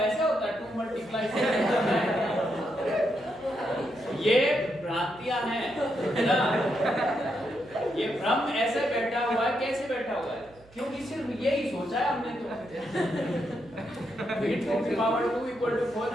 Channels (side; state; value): right; noise; hum, 26 dB below the sound